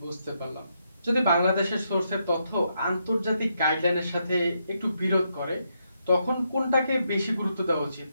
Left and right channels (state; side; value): inverted; both; correlation -0.79